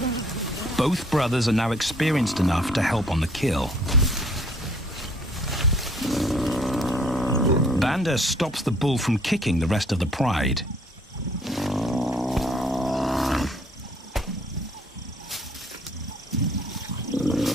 Both brothers are now experienced enough to help on the kill. Banda stops the bull from kicking the rest of the pride.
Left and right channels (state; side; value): normal; both; correlation 0.60